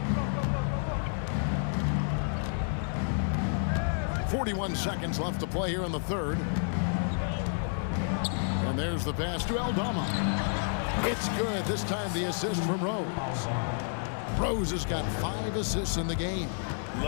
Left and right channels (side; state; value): right; silent; digital silence